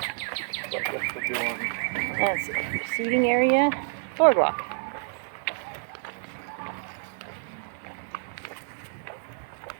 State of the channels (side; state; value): left; silent; 59 dB below the other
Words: That's it. Seating area, boardwalk.